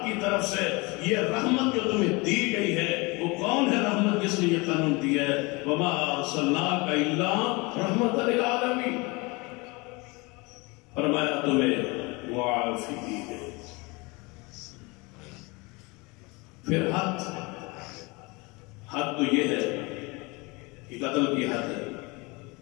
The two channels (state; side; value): quieter; right; 26.2 dB